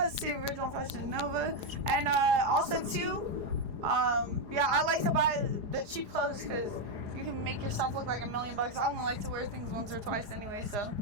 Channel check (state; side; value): late; left; 4.9 ms